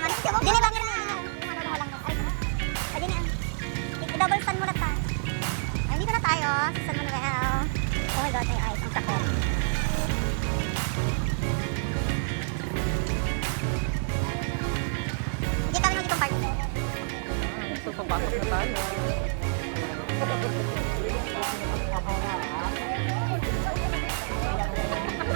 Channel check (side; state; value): left; silent; digital silence